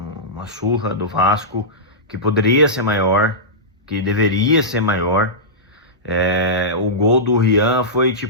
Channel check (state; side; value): normal; both; correlation -0.15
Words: surra do Vasco, que poderia ser maior, que deveria ser maior. O gol do Rian foi